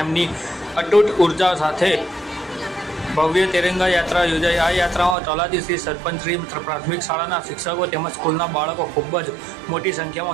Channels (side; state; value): left; drops out; at 5.2 s